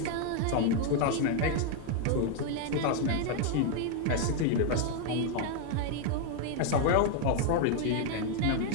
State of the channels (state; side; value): different; both; correlation 0.00